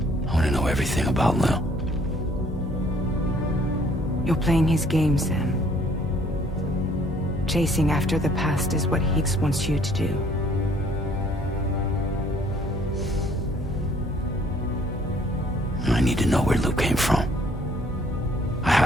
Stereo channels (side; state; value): both; normal; correlation 0.60